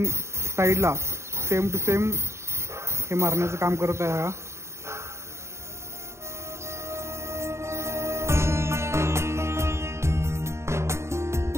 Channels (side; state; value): left; late; 0.13 ms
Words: साईडला सेम टू सेम हे मारण्याचं काम करत आहे हा.